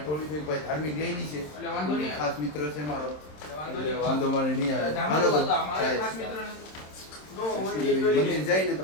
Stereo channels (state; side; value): late; right; 27 ms